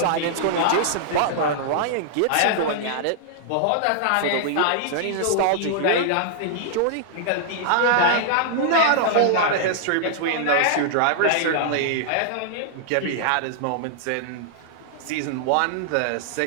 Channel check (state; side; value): different; both; correlation -0.01